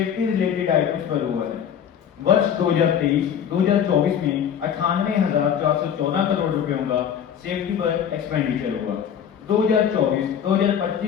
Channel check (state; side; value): quieter; right; 8.6 dB